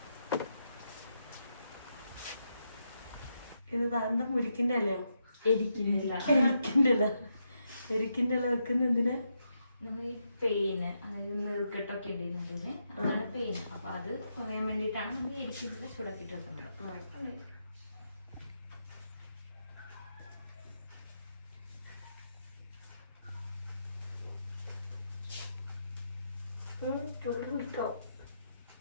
ഇത് താന്ത മുരിക്കിന്റെ അല്ലയോ? എരിക്കുന്നില്ല. എരിക്കിന്റെ ഇല വെക്കുന്ന എന്തിനാ? നമ്മൾ ഈ പെയിന്, അതായത് നീർക്കെട്ടൊക്കെ ഉണ്ടായിരുന്നതുപോലെ അതാണ് പെയിന്. അപ്പൊ അത് കുറയാൻ വേണ്ടിയിട്ടാണ് നമ്മൾ എരിക്കുന്നില്ല ചൂടാക്കിയിട്ട് വെക്കുന്നത്. ചൂടുണ്ടോ?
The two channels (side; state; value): both; inverted; correlation -0.82